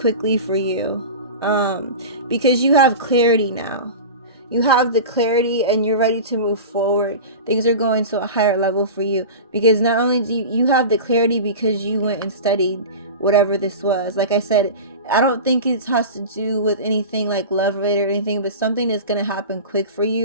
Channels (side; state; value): both; inverted; correlation -0.30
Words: for you, because you have clarity now. You have the clarity and you're ready to move forward. Things are going to a higher level for you because not only do you have the clarity because you went and studied whatever this was. Like I said, I don't think it has to do with anything like love related or anything, but something is going to happen quick for